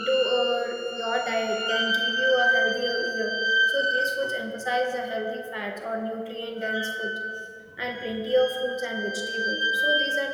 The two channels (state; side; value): identical; both; correlation 1.00